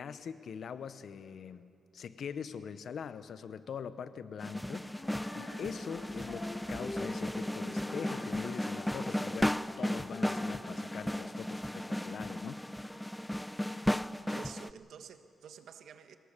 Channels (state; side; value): normal; both; correlation 0.96